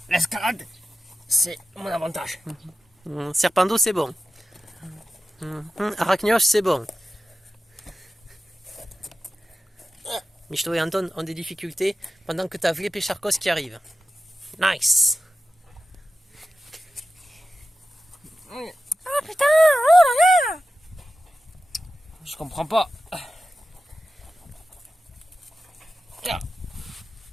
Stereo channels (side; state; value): both; normal; correlation 0.93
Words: L'escalade, c'est mon avantage. Serpando, c'est bon. Arachnioche, c'est bon. Michto et Anton ont des difficultés pendant que t'as Vlep et Charcos qui arrivent. Nice. Ah putain, oh là là. Je comprends pas.